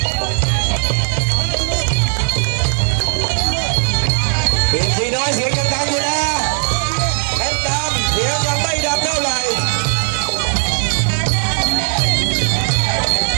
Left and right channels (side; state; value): left; silent; digital silence